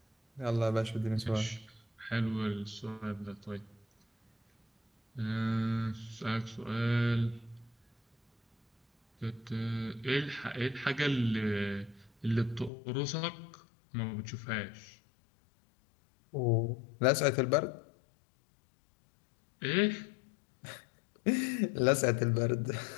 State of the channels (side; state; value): right; drops out; at 12.7 s